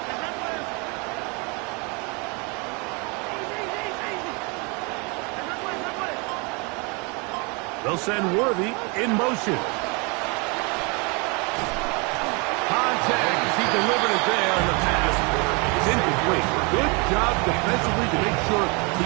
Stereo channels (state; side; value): quieter; left; 30.8 dB